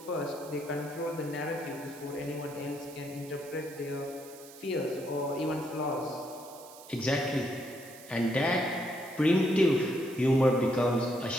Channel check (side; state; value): right; noise; hiss, 19 dB below the sound